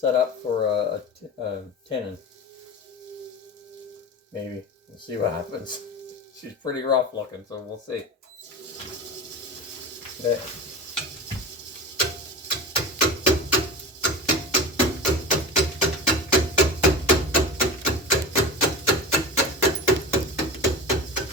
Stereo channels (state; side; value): normal; both; correlation 0.29